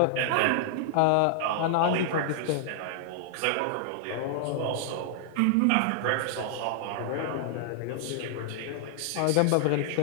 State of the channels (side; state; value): both; different; correlation 0.00